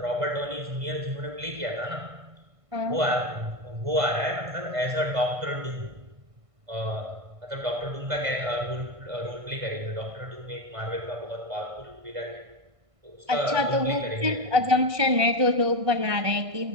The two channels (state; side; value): late; left; 1.6 ms